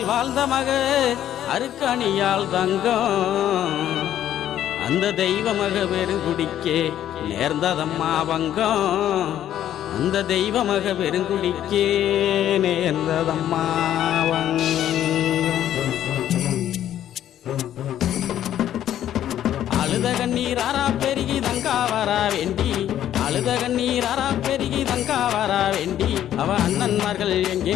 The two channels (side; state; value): right; quieter; 11.4 dB